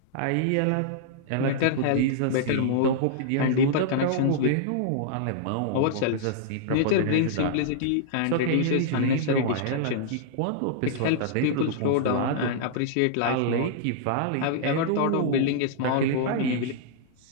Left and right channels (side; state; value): both; different; correlation -0.02